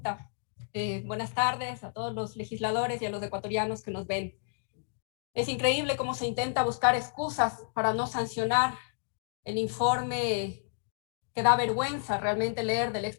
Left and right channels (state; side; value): silent; right; digital silence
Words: Buenas tardes a todos los legisladores y a los ecuatorianos que nos ven. Es increíble cómo se intenta buscar excusas para no sancionar el informe que da vergüenza realmente leer del